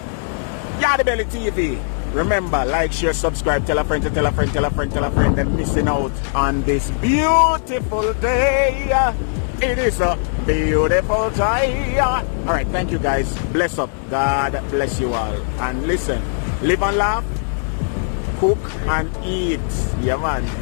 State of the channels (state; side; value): silent; right; 66 dB below the other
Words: Yardie Belly TV. Remember, like, share, subscribe, tell a friend to tell a friend, tell a friend, tell a friend, and missing out on this beautiful day. It is a beautiful day. Alright, thank you guys. Bless up. God bless you all. And listen, live and laugh, cook and eat. Yeah man,